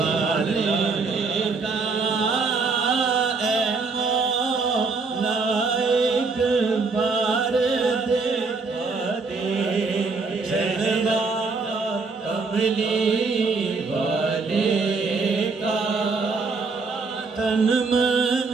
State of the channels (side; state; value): left; quieter; 4.3 dB